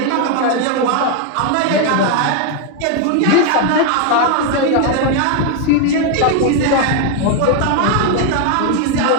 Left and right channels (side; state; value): both; different; correlation 0.01